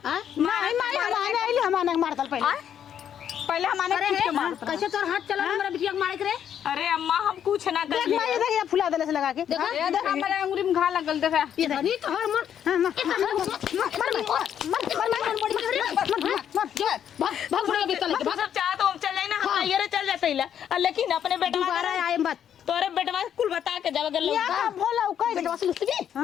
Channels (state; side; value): quieter; right; 9.3 dB